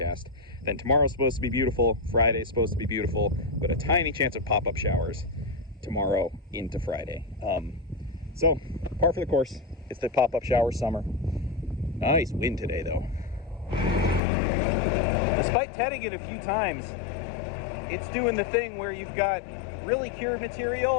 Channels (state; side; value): drops out; right; at 14.2 s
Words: Then tomorrow's supposed to be beautiful, Friday's supposed to be beautiful, but a tiny chance of pop-up showers tomorrow into Friday. So par for the course. It's the pop-up shower summer. Nice wind today though. Despite tedding it a few times, it's doing the thing where you've got really cured